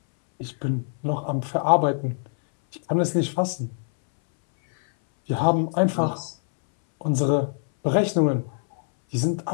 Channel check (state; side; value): silent; right; 63 dB below the other